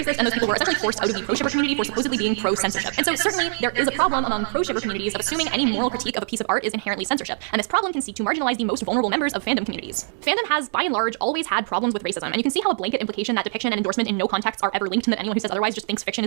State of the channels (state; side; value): silent; left; digital silence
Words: and those people were essentially forced out of the pro-shipper community for supposedly being pro-censorship. And so certainly there is a problem among pro-shipper communities of assuming any moral critique of a piece of art is inherently censorship, and this problem can seek to marginalize the most vulnerable members of fandom communities. Fandom has, by and large, always had problems with racism, and you can see how a blanket implication that depiction and endorsement in no context are ever linked, and that anyone who says otherwise just thinks fiction